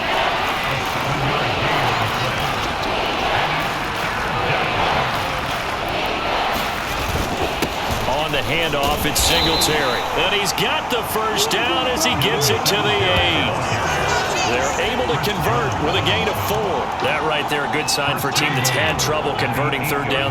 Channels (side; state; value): both; identical; correlation 1.00